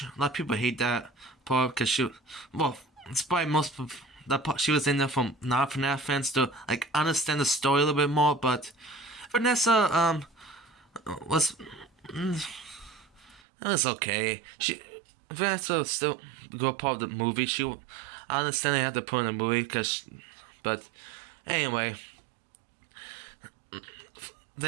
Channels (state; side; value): drops out; left; at 13.4 s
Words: A lot of people hate that part because it's probably most of that part she was in there from non-FNAF fans to understand the story a little bit more. But Vanessa was it was okay. Vanessa was still a good part of the movie. I understand they had to put in the movie but anyway.